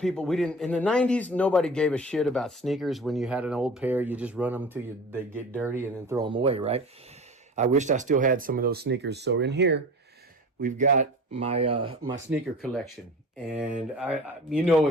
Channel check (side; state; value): both; normal; correlation 0.36